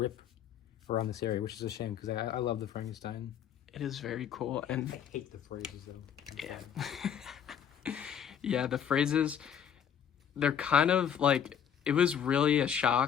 around this area, which is a shame, because I love the Frankenstein. It is very cool. And I hate the phrases, though. Yeah. Yeah, the phrases, they're kind of like, it was really a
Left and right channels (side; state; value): right; quieter; 8.6 dB